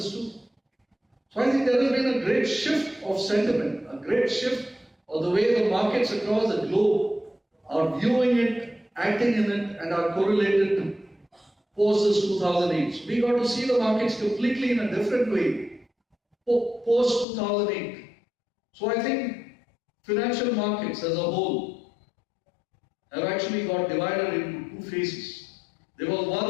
too. So I think there has been a great shift of sentiment, a great shift of the way the markets across the globe are viewing it, acting in it, and are correlated post this 2008. So we got to see the markets completely in a different way post 2008. So I think financial markets as a whole have actually got divided into two phases. There was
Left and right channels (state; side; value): drops out; right; at 17.2 s